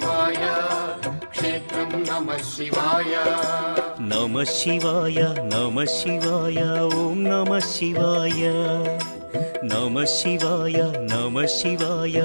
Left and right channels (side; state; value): both; inverted; correlation -1.00